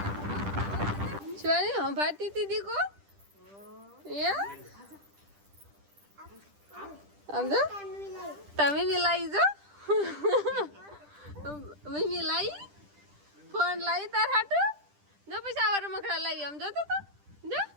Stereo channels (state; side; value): late; left; 10 ms